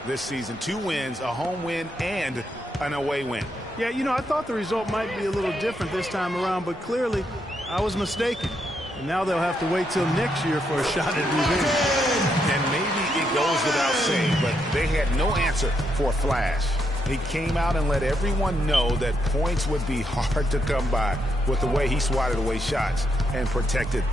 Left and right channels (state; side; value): normal; both; correlation 0.79